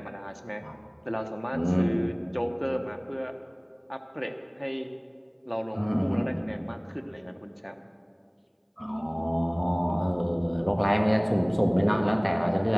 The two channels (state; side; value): identical; both; correlation 1.00